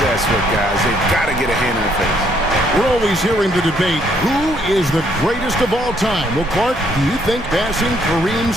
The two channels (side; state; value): both; normal; correlation 0.68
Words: with, guys. They've got to get a hand in the face. We're always hearing the debate, who is the greatest of all time? Well, Clark, do you think passing